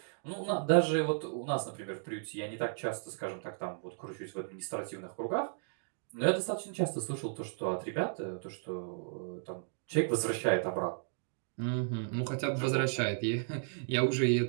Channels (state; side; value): silent; left; digital silence